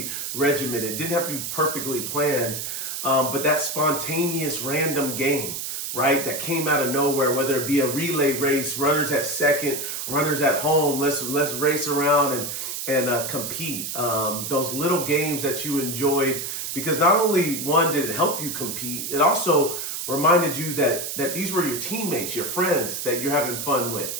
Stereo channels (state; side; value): noise; right; hiss, 5 dB below the sound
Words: regimented. It didn't have to be perfectly planned. But that spontaneous random game, right, that came out of nowhere, whether it be a relay race, runners at second, runners at home, let's race around and compete. Those little games that you enjoyed, because not only one did it help you compete, it also reminded you that these were your teammates, your friends that you're having fun with,